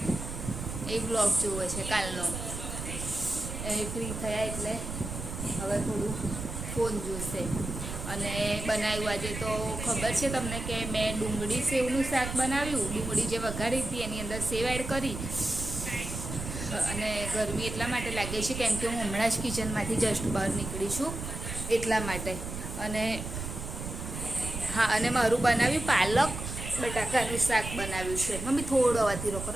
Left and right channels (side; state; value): right; noise; rumble, 7 dB below the sound